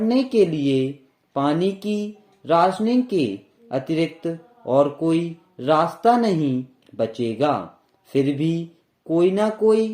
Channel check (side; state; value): both; identical; correlation 1.00